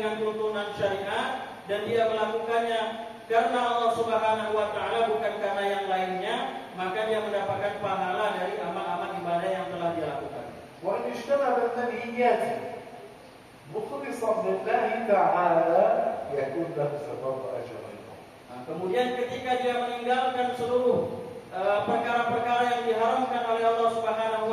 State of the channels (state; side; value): identical; both; correlation 1.00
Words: tuntunan syariat dan dia melakukannya karena Allah Subhanahu wa taala bukan karena yang lainnya, maka dia mendapatkan pahala dari amal-amal ibadah yang telah dia lakukan. وأن اجتنب المنهيات مخلصا لله تعالى يكون له ثواب أجر. Kemudian ketika dia meninggalkan seluruh perkara-perkara yang diharamkan oleh Allah Subhanahu